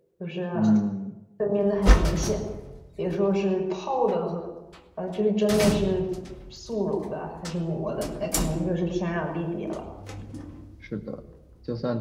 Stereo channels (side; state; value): both; identical; correlation 1.00